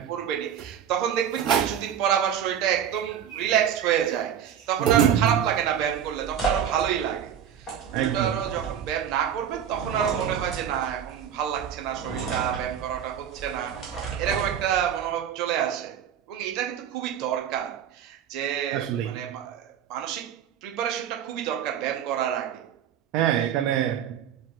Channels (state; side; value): quieter; left; 9.2 dB